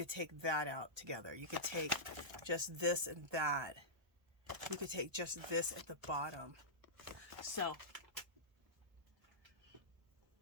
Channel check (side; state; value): left; late; 1.3 ms